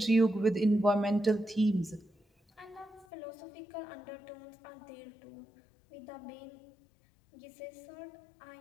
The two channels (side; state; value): right; drops out; at 3.1 s